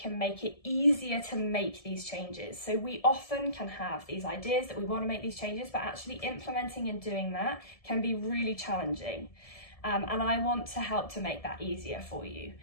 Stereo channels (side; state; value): right; late; 1.7 ms